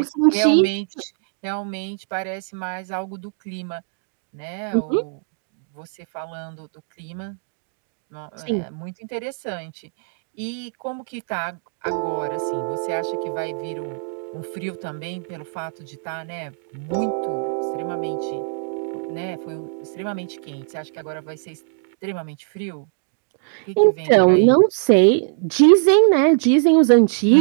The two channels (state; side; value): silent; left; digital silence